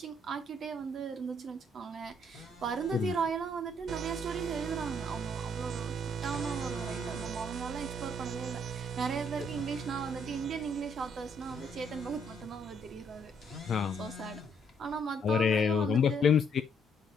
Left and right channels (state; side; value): normal; both; correlation 0.68